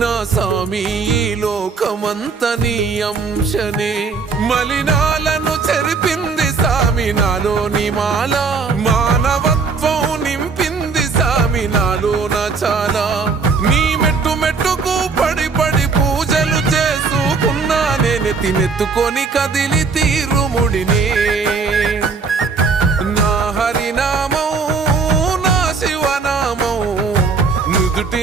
సామి ఈ లోకమంత నీ అంశనే మలినాలను చెరిపింది సామి నాలోని మాల మానవత్వం నింపింది సామి నాలోన చాలా నీ మెట్టు మెట్టుకు పడి పడి పూజలు చేసుకున్నా నేను తినెత్తుకొని కదిలి తీరుముడినే నా హరినామం నా శివనామం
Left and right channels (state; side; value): quieter; left; 4.8 dB